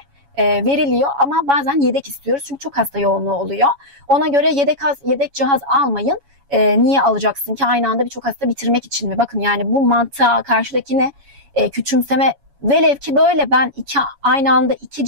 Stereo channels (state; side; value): late; left; 7.1 ms